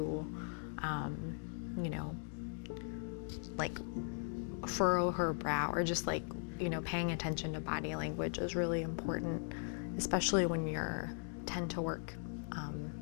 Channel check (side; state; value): right; silent; 52 dB below the other